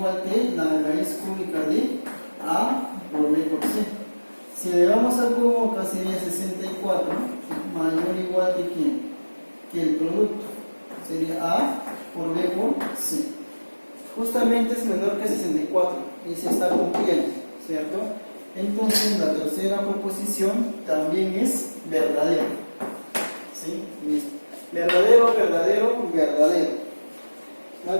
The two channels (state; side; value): inverted; both; correlation -1.00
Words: que la raíz cúbica de A por B por C. Si le damos al cubo, acá sería 64, mayor o igual que ¿quién? Que el producto. Sería A por B por C. Justamente es menor que 64 y se está cumpliendo, ¿cierto? Entonces la tercera proposición también es verdadera. ¿Sí? Listo. Verdadero, verdadero, verdadero. La